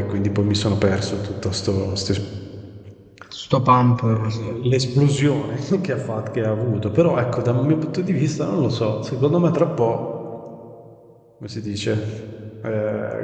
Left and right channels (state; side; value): identical; both; correlation 1.00